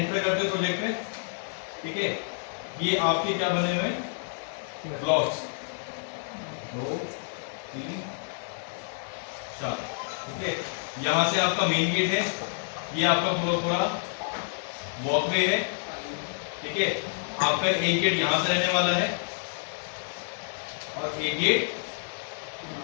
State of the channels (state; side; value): silent; right; 57 dB below the other